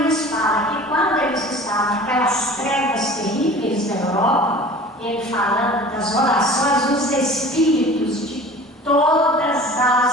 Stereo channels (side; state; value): both; normal; correlation 0.43